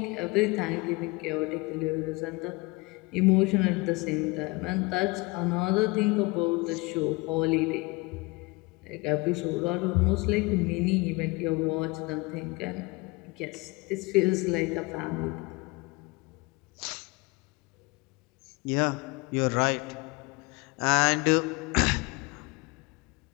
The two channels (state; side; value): quieter; right; 25.3 dB